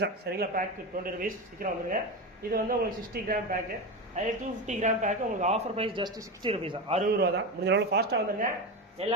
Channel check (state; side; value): normal; both; correlation 0.20